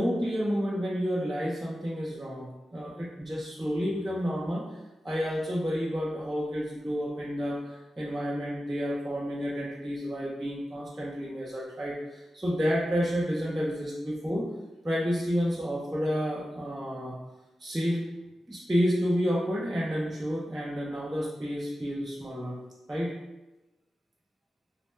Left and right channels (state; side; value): normal; both; correlation 0.93